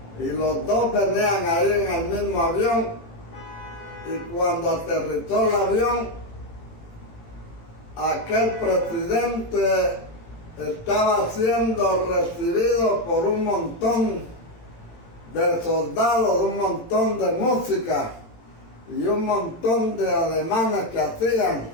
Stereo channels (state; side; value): late; right; 18 ms